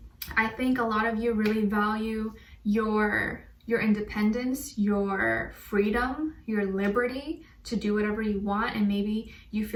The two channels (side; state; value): both; identical; correlation 1.00